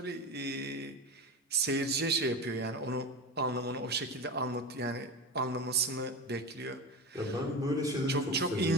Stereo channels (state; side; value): normal; both; correlation 0.25